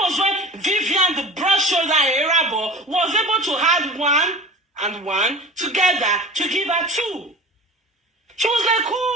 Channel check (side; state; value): both; normal; correlation 0.37